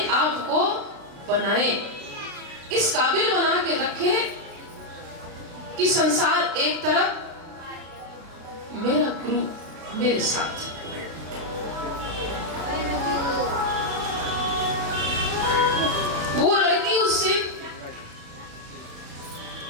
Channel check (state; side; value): late; left; 36 ms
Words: आप को बनाए, इस काबिल बना के रखे कि संसार एक तरफ, मेरा गुरु मेरे साथ। वो लड़की उससे